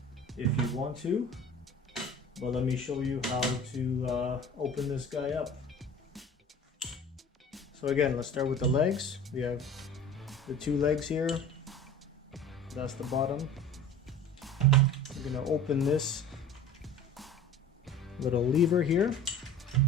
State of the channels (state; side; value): normal; both; correlation 0.40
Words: if you want to. But let me show you how to open this guy up. So again, let's start with the legs. We have the two legs here. That's the bottom. I'm gonna open this little lever here.